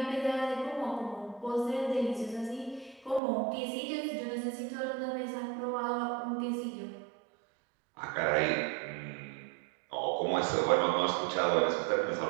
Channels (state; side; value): drops out; left; at 3.2 s